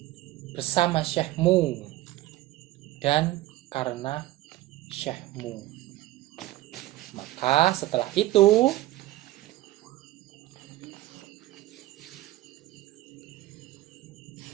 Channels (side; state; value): left; quieter; 16.6 dB